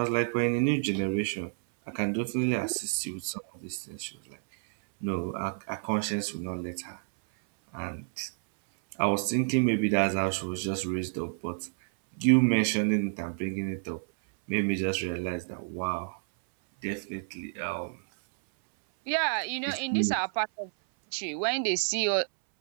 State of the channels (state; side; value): silent; left; 58 dB below the other